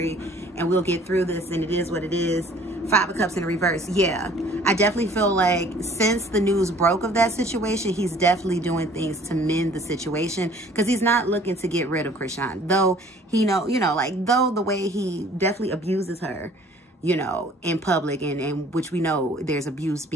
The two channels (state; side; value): normal; both; correlation 0.53